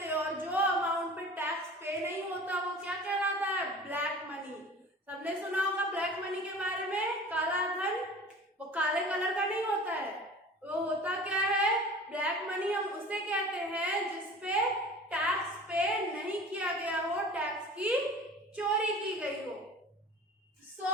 और जो अमाउंट पे टैक्स पे नहीं होता वो क्या कहलाता है, ब्लैक मनी। सबने सुना होगा ब्लैक मनी के बारे में। काला धन वो काले कलर का नहीं होता है, वो होता क्या है, ब्लैक मनी। हम उसे कहते हैं जिसपे टैक्स पे नहीं किया गया हो, टैक्स की चोरी की गई हो। सो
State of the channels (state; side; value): normal; both; correlation 0.41